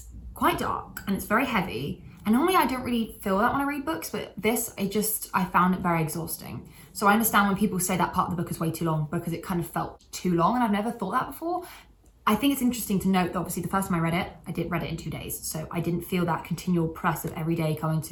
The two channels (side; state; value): both; identical; correlation 1.00